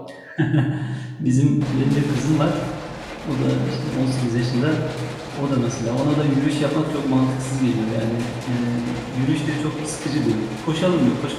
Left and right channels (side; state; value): both; identical; correlation 1.00